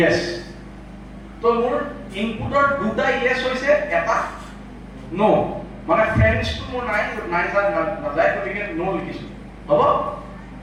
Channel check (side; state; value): both; identical; correlation 1.00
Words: তো মোৰ ইনপুটৰ দুটা yes হৈছে এটা no মানে ফ্ৰেণ্ডছ টু মোৰ নাই নাযায় গতিকে no লিখিছো হ'ব